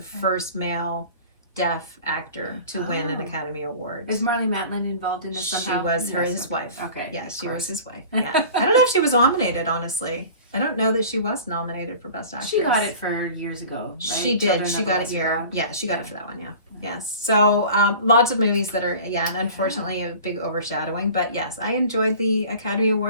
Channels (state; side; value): inverted; both; correlation -0.41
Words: first male deaf actor to win an Academy Award. Is Marlee Matlin involved in this somehow? She was his wife. Okay. Yes, she was his wife. Yeah. I don't know if she was nominated, honestly. I don't know that she was nominated for Best Actress. She got it for years ago, right? She did. She got it she got it for that one, Yes. So lots of movies that are, and unfortunately a big overshadowing. But yes, I enjoyed the Academy